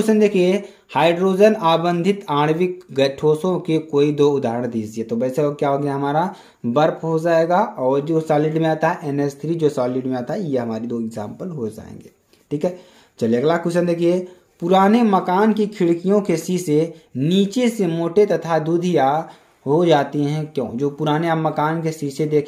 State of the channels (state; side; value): identical; both; correlation 1.00